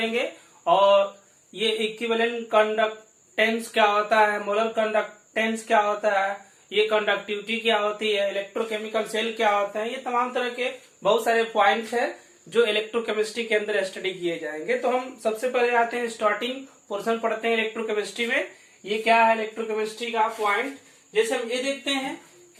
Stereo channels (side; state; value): both; identical; correlation 1.00